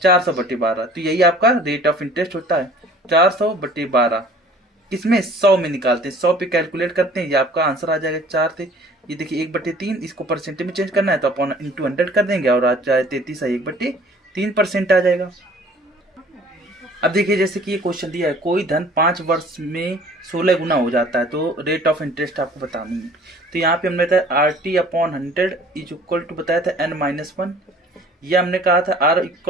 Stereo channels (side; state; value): both; normal; correlation 0.51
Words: 400/12। तो यही आपका रेट ऑफ इंटरेस्ट होता है, 400/12। किसमें, 100 में निकालते हैं, 100 पे कैलकुलेट करते हैं, ये आपका आंसर आ जाएगा 4 से। ये देखिए 1/3, इसको परसेंटेज में चेंज करना है तो अपॉन इंटू 100 कर देंगे और आ जाए 33 है 1/3% आ जाएगा। अब देखिए जैसे कि ये क्वेश्चन दिया है, कोई धन 5 वर्ष में 16 गुना हो जाता है, तो रेट ऑफ इंटरेस्ट आपको बतानी है। तो यहाँ पे हमने बताया RT/100 इज इक्वल टू बताया था n-1, या हमने कहा था R